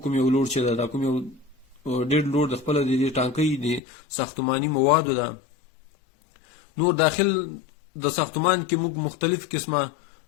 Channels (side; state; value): right; drops out; at 3.8 s